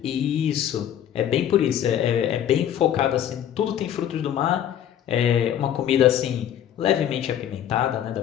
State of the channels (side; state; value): right; quieter; 10.3 dB